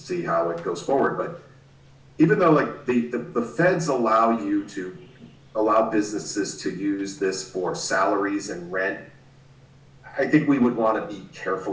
how it goes forward. But even though the feds allow businesses to use this for salaries and rent, I think we would want to be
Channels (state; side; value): identical; both; correlation 1.00